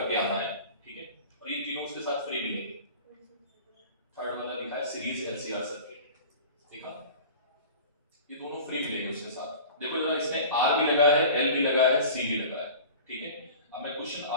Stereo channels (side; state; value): both; inverted; correlation -0.39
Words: आना है, ठीक है? और ये तीनों उसके साथ फ्री मिलेंगे। थर्ड वाला लिखा है सीरीज एलसीआर सर्किट, देखा? ये दोनों फ्री मिलेंगे उसके साथ। देखो जरा, इसमें आर भी लगा है, एल भी लगा है, सी भी लगा है, ठीक है? अब मैं क्वेश्चन